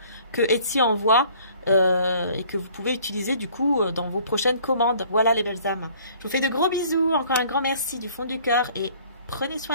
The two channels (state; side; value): inverted; both; correlation -0.55